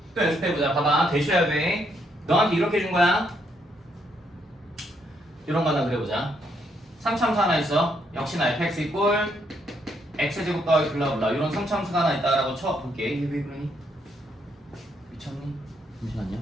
또 연습해보자. 봐봐. 되셔야 돼. 너한테 이렇게 준 거야. 이런 거 하나 그려보자. 3참수 하나 있어. 역시나 fx 이꼴 x제곱 더하기 블라블라 이런 3참수가 하나 있다라고 쳐볼게. 이게 왜 그러니? 미쳤니? 잠시만요.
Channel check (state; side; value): normal; both; correlation 0.74